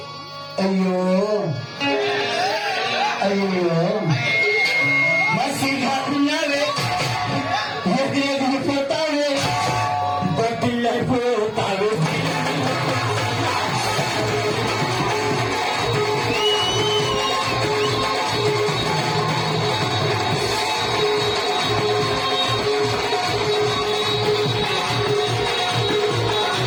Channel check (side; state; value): both; identical; correlation 1.00